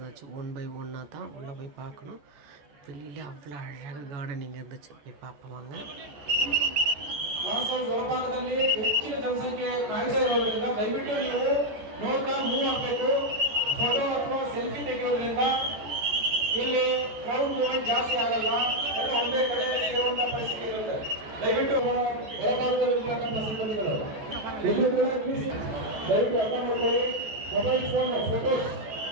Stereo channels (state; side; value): late; left; 14 ms